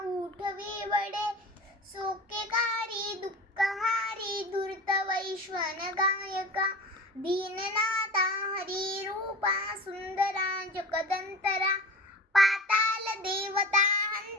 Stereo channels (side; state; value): both; normal; correlation 0.34